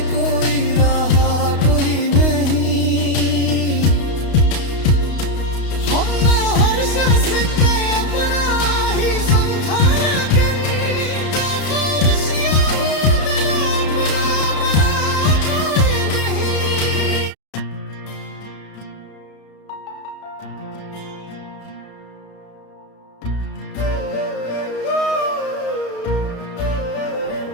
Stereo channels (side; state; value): right; late; 32 ms